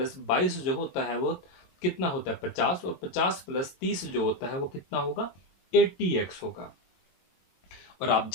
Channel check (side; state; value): right; late; 22 ms